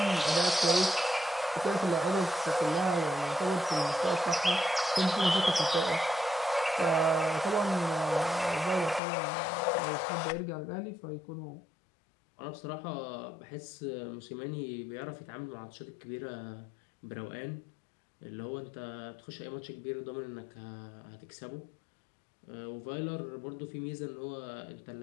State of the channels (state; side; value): drops out; right; at 9.0 s